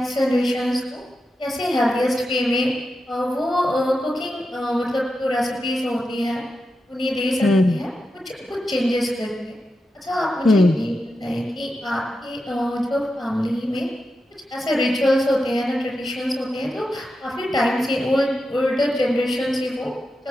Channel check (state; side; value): normal; both; correlation 0.89